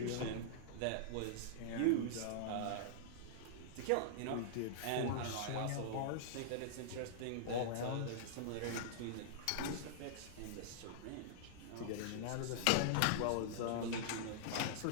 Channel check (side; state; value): both; different; correlation -0.02